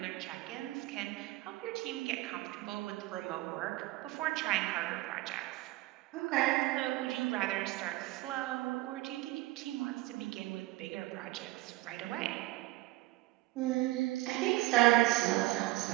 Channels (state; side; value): quieter; left; 19.4 dB